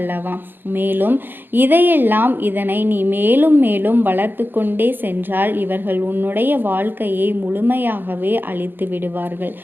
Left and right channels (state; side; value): late; left; 0.097 ms